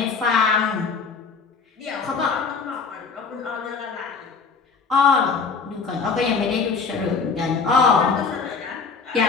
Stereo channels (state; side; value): quieter; right; 5.2 dB